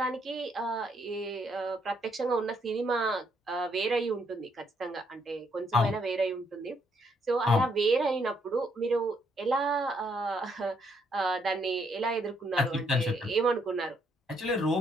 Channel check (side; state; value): both; normal; correlation 0.72